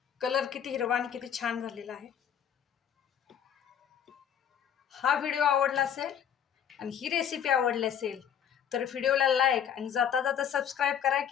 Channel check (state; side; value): quieter; right; 8.9 dB